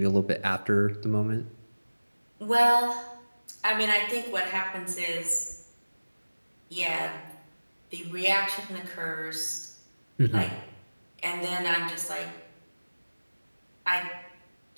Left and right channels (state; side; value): inverted; both; correlation -1.00